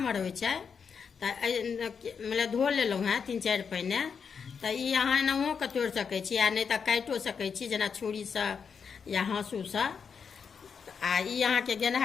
होइ छै तो मतलब धो लेलहुँ हैं 3-4 पहिने तो ई अहाँ एनाहो के तोड़ि सकै छी आ नहीं तो काटियो सकै छी जेना छुरी से या हाँसू से। आ ई अहाँ के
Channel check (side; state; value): right; quieter; 6.3 dB